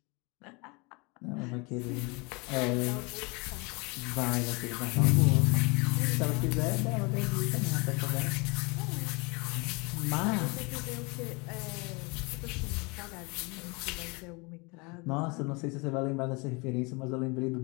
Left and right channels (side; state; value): right; quieter; 28.7 dB